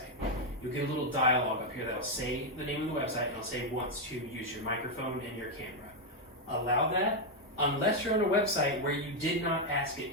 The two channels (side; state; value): both; normal; correlation 0.02